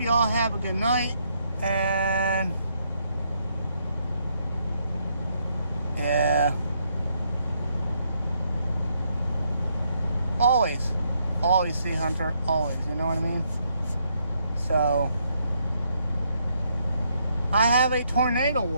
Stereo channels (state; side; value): inverted; both; correlation -0.74